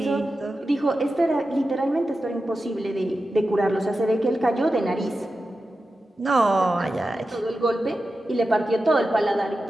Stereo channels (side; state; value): both; normal; correlation 0.92